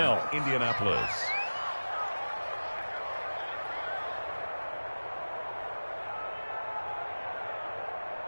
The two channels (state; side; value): inverted; both; correlation -1.00